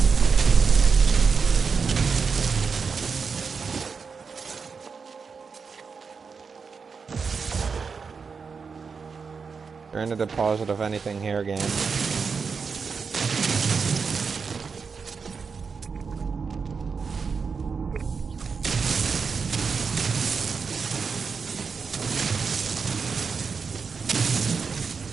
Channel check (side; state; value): left; quieter; 5.4 dB